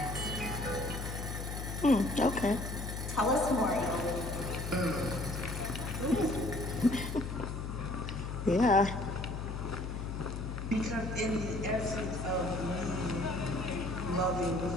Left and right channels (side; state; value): left; noise; hum, 5 dB below the sound